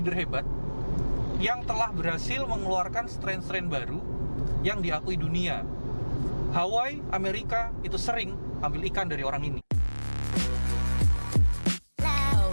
hebat yang telah berhasil mengeluarkan strain-strain baru yang diakui dunia. Hawaii, Amerika itu sering ambil ikan dari orang ini.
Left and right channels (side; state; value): both; inverted; correlation -1.00